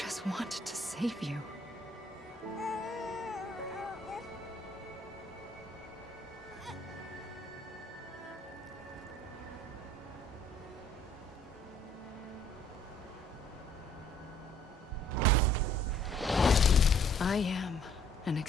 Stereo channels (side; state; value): both; normal; correlation 0.60